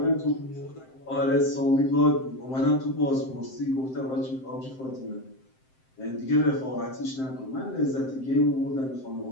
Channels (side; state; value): right; late; 7.7 ms